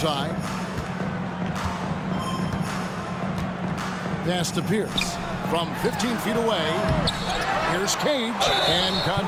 Pass to Pierce. From 15 feet away. Here's Cage. And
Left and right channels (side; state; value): both; identical; correlation 1.00